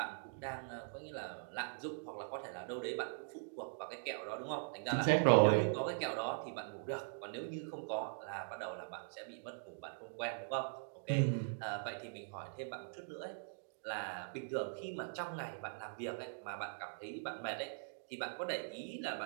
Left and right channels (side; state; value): left; silent; digital silence